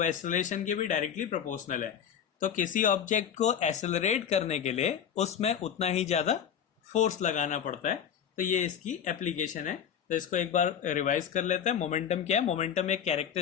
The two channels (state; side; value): quieter; right; 8.5 dB